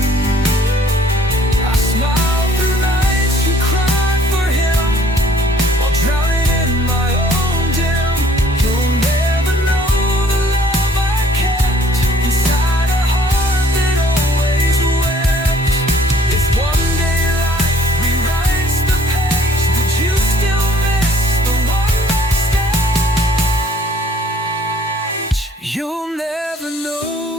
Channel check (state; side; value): normal; both; correlation 0.58